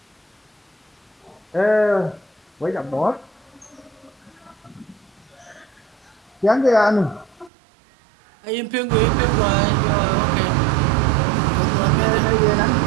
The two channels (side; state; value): left; drops out; at 7.5 s